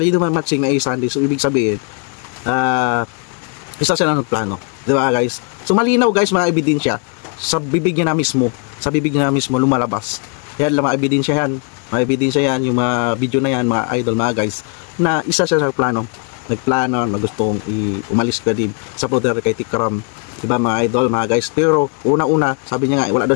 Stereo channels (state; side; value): quieter; right; 36.1 dB